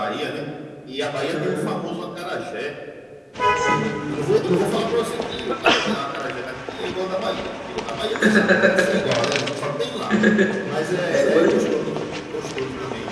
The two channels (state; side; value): identical; both; correlation 1.00